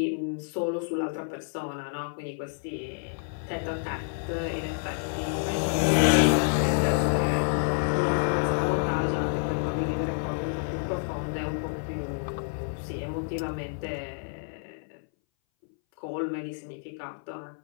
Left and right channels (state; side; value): silent; right; 59 dB below the other